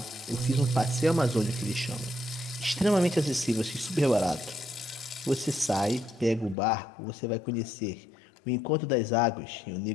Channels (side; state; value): right; drops out; at 6.6 s